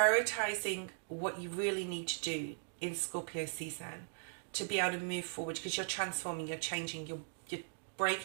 what you really need to do in Scorpio season to be able to move forward, because you're transforming, you're changing, you're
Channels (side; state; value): left; silent; digital silence